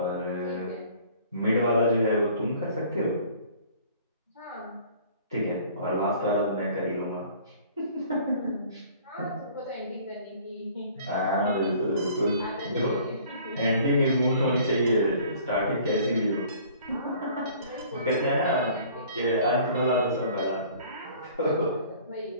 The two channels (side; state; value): both; inverted; correlation -0.52